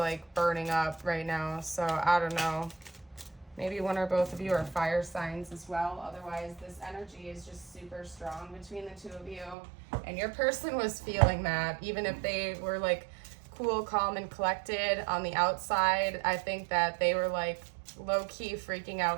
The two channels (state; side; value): drops out; left; at 9.6 s